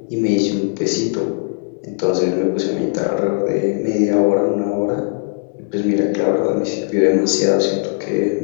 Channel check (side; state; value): right; silent; 67 dB below the other